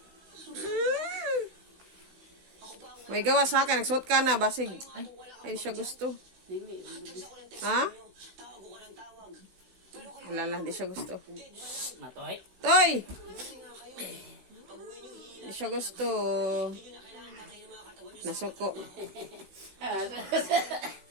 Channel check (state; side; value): late; left; 16 ms